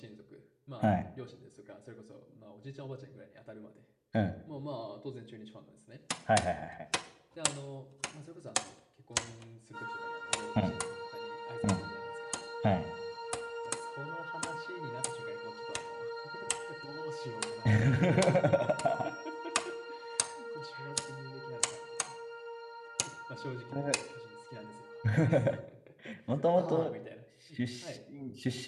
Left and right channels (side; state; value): both; identical; correlation 1.00